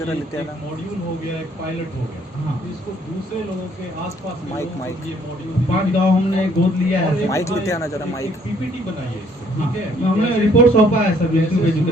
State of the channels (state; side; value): normal; both; correlation 0.63